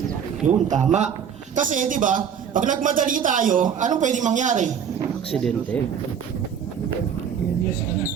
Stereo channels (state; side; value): quieter; left; 7.9 dB